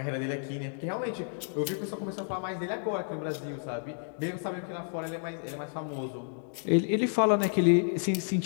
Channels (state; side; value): silent; right; 57 dB below the other